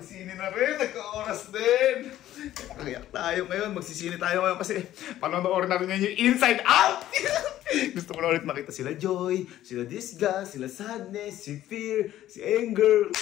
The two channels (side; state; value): right; quieter; 13.2 dB